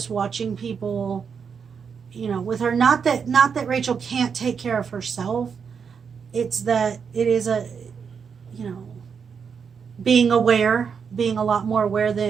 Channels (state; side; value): quieter; left; 6.4 dB